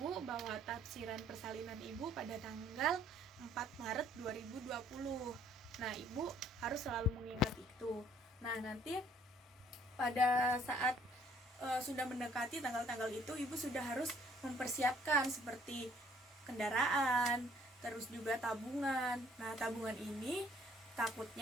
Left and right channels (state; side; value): normal; both; correlation 0.61